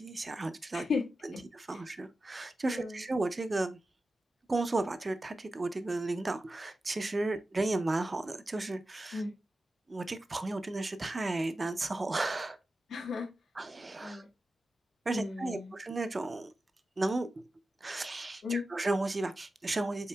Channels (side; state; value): both; normal; correlation 0.93